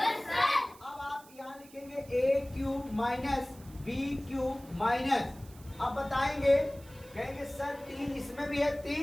sir. अब आप यहाँ लिखेंगे a cube minus b cube minus, अब बताएंगे, कहेंगे सर 3 इसमें भी है,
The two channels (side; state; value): right; noise; hiss, 23 dB below the sound